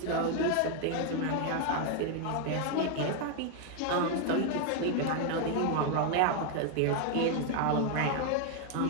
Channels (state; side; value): different; both; correlation 0.00